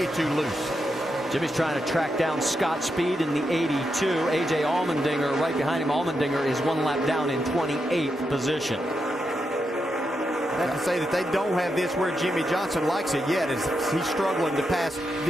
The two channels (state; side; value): normal; both; correlation 0.85